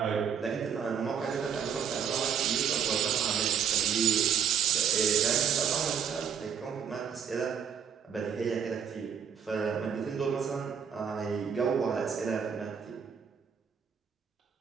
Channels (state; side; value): quieter; left; 7.6 dB